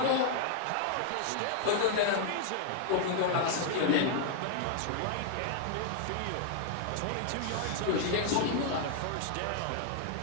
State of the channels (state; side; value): different; both; correlation 0.00